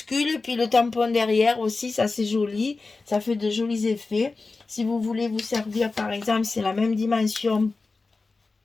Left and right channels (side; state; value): right; quieter; 3.8 dB